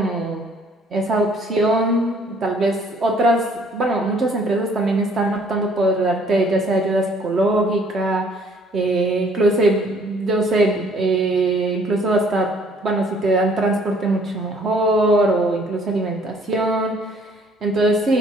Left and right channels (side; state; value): both; normal; correlation 0.60